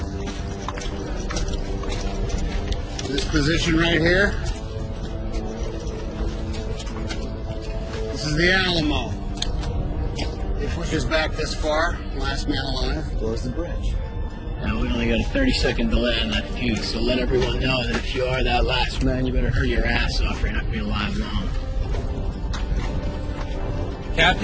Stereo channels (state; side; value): identical; both; correlation 1.00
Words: This position right here, this is the Alamo. It pushes back this far, last man alive goes the bridge. Now, we only got a 30-second delay on that fuse, so let everyone know that if you are that last man, you better hurry your ass off or you're not going to be alive long.